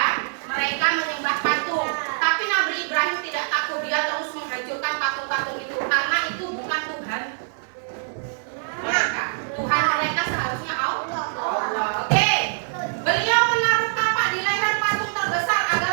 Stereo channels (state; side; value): silent; left; digital silence